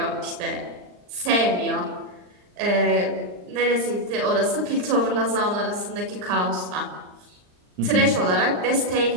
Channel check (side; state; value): left; late; 39 ms